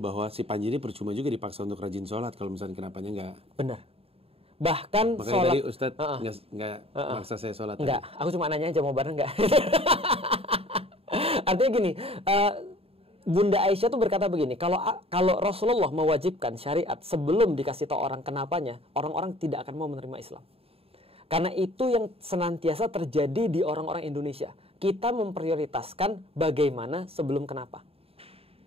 si Panji ini percuma juga dipaksa untuk rajin sholat kalau misalnya kenapanya enggak. Benar. Bahkan makanya sholat. Tadi Ustadz nggak maksa saya sholat. Enggak, aku cuma nanya aja mau bareng enggak. Artinya gini, Bunda Aisyah tuh berkata begini, kalau Rasulullah mewajibkan syariat sebelum dikasih tahu orang kenapanya, orang-orang tidak akan mau menerima Islam. Karena itu yang senantiasa terjadi di orang-orang Indonesia. Kita memprioritaskan bagaimana sebelum kenapa.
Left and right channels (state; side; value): late; left; 0.28 ms